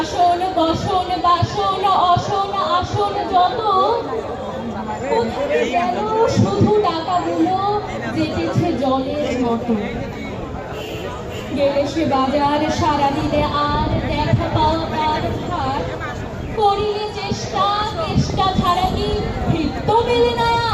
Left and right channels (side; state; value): both; identical; correlation 1.00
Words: বসন বাসন অসন আসন যত, কোথায় গেল শুধু টাকাগুলো যেতেছে জলের মতো। গেলে সে বাজার সারা দিলে আর দেখা পাওয়া তার ভার। করিলে চেষ্টা চেষ্টা ছাড়া কি ভৃত্য মেলে না।